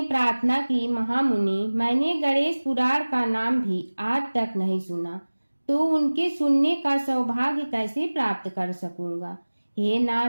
प्रार्थना की, महामुनि, मैंने गणेश पुराण का नाम भी आज तक नहीं सुना, तो उनके सुनने का सौभाग्य कैसे प्राप्त कर सकूंगा? हे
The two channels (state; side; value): inverted; both; correlation -1.00